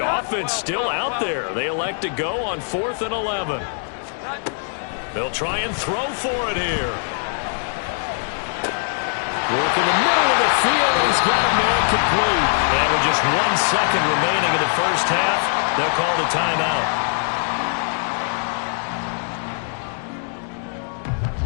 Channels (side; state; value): right; silent; 64 dB below the other